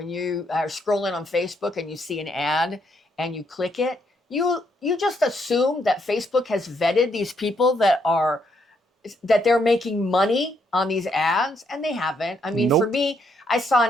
you are scrolling on Facebook and you see an ad and you click it. You just assume that Facebook has vetted these people that they're making money on these ads, and they haven't. I mean, for Nope. me, I saw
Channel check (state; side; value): normal; both; correlation 0.74